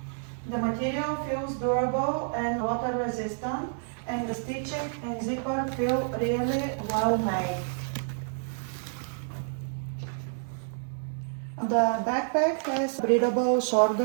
The material feels durable and water resistant, and the stitching and zipper feel really well made. The backpack has breathable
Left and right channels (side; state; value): left; silent; 57 dB below the other